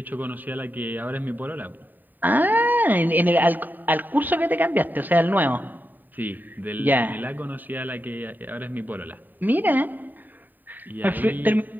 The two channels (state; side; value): late; left; 0.089 ms